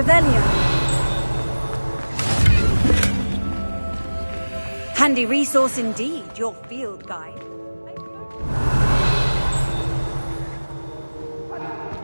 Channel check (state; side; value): inverted; both; correlation -1.00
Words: Handy resource indeed, your field guide.